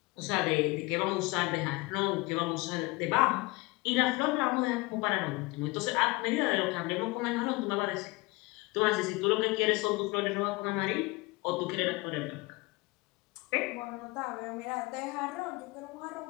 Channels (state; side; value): quieter; right; 23.9 dB